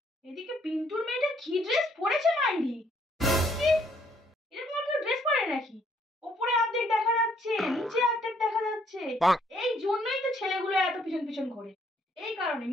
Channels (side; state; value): both; normal; correlation 0.67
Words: এদিকে পিন্টুর মেয়েটা কি ড্রেস পরেছে মাইরি! এরকম আর কেউ ড্রেস পরে নাকি? উপরে অর্ধেক দেখা যাচ্ছে, নিচে অর্ধেক দেখা যাচ্ছে। এই জন্যই তো ছেলেগুলো এত পিছন পিছন ঘোরে, এই কারণে।